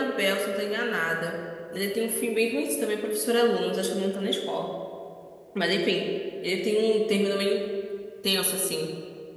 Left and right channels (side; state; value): both; identical; correlation 1.00